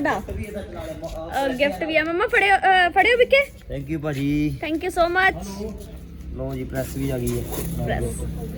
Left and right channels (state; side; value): identical; both; correlation 1.00